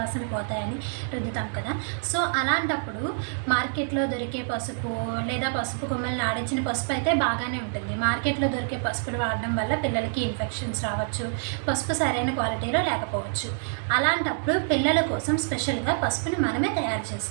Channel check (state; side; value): silent; left; digital silence